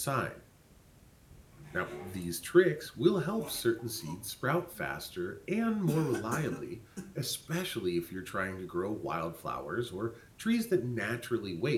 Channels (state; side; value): identical; both; correlation 1.00